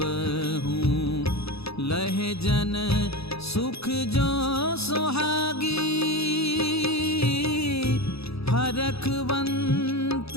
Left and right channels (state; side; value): late; right; 0.78 ms